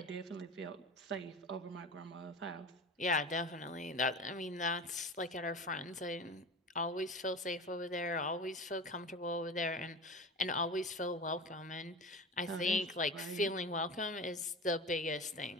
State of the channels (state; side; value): normal; both; correlation 0.31